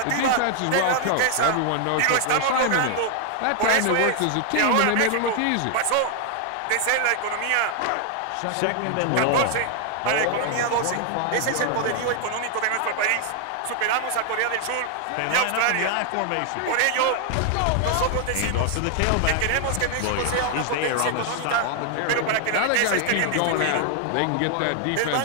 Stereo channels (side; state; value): both; different; correlation 0.00